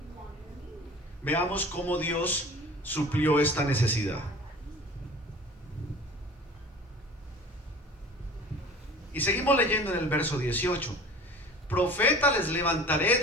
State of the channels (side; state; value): both; normal; correlation 0.42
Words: Veamos cómo Dios suplió esta necesidad. Y seguimos leyendo en el verso 18: profeta les levantaré